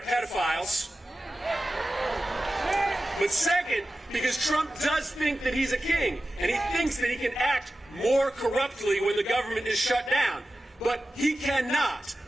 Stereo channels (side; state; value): both; normal; correlation 0.94